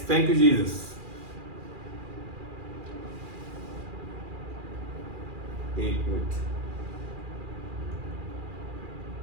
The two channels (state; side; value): late; left; 2.4 ms